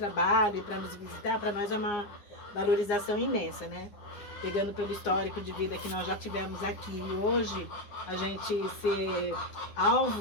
e para nos visitar, para nós é uma valorização imensa, né? Pegando pelo histórico de vida que nós já tivemos aqui. E hoje, a gente ser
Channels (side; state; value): right; late; 9.8 ms